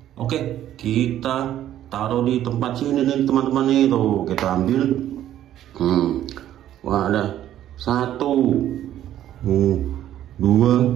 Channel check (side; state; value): left; quieter; 12.0 dB